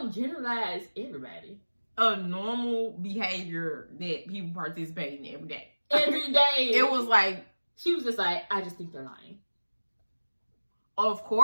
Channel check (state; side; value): inverted; both; correlation -1.00